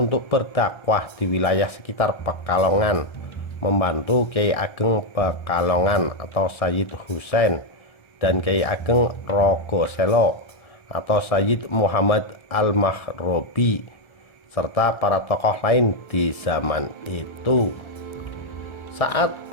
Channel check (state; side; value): late; right; 1.3 ms